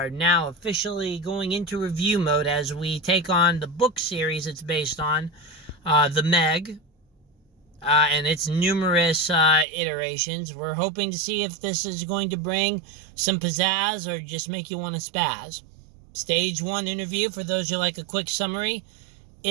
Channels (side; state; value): left; drops out; at 9.7 s